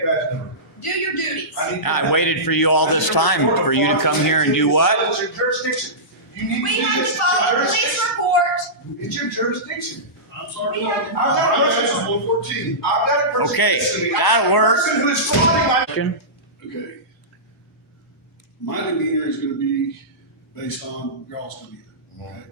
badge number? Do your duties. I waited for you all this time for you to come here and do what? It's your jurisdiction. You need We to do have to this. follow the police report. It's your jurisdiction. I'm sorry. We have to I've got a person. 114. I've got a person. Okay, listening. that'll work. Person who is frauding my. Okay. My demeanor is going to be based on y'all's demeanor. Okay.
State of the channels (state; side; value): normal; both; correlation -0.18